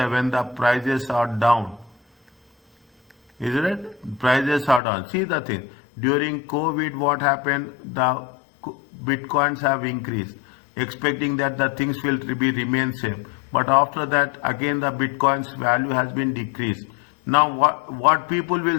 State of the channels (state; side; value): drops out; right; at 4.8 s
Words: the prices are down. Is it right? Prices are down. See the thing. During COVID, what happened? The bitcoins have increased, expecting that the things will remain same. But after that, again the bitcoin's value has been decreased. Now what people will